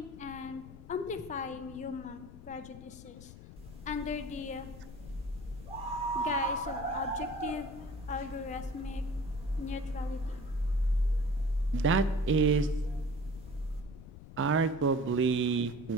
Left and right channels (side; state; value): left; noise; rumble, 15 dB below the sound